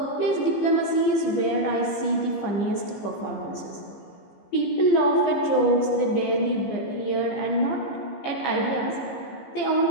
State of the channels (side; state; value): right; late; 15 ms